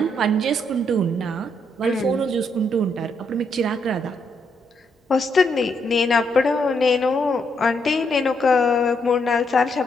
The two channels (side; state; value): both; normal; correlation 0.76